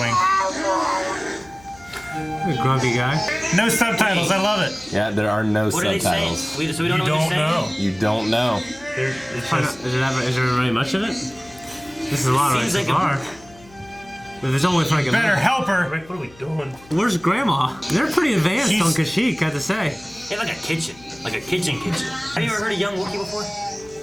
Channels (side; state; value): left; noise; hum, 24 dB below the sound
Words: A grumpy guy. No subtitles, I love it. Yeah, there are no What are they saying? subtitles. So we don't know You what don't they're know. saying? You don't know. It's Is there really much of it? This is a lot right Seems so like a- far. But there's only like a Better help her. Rick, what are we doing? Where's Grandma? They're pretty advanced She's- on Kashyyyk, I have to say. They have like a kitchen. Like a kitchen. Have you ever heard a young Wookiee before?